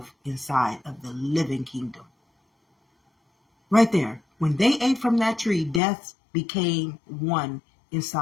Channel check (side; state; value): right; drops out; at 5.8 s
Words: inside of the living kingdom. Right there. When they ate from that tree, death became one